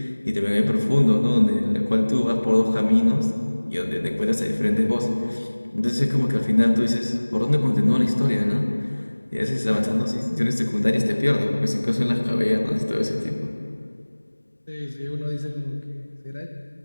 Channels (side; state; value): both; inverted; correlation -1.00